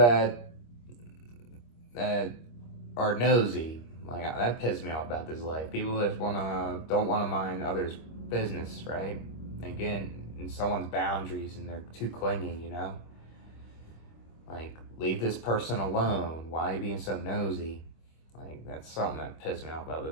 are nosy, like, that pisses me off about this life. People that don't wanna mind others' business, right? Again, in someone's boundaries, and they're too clingy. Like, leave this person alone. Why are you being so nosy? Like, that's something that pissed me off about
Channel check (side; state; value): right; late; 25 ms